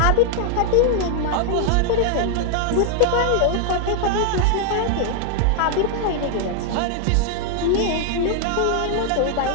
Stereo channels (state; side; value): different; both; correlation 0.00